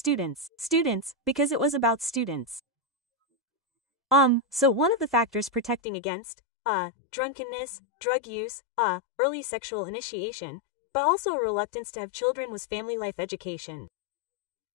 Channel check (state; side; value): drops out; right; at 5.8 s